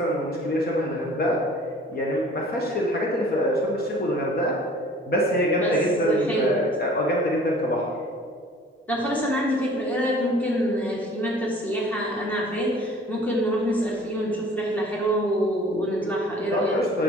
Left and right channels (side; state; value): both; normal; correlation 0.50